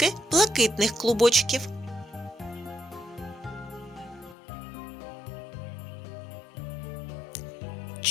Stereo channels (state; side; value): drops out; right; at 4.4 s